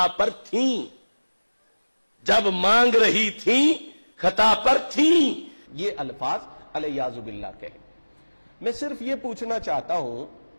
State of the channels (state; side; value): inverted; both; correlation -1.00